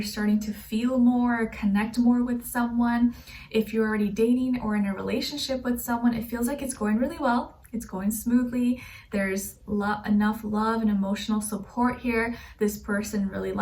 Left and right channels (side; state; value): both; identical; correlation 1.00